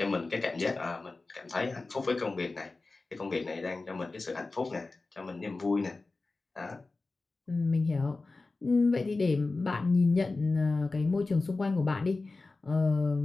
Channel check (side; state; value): right; quieter; 3.5 dB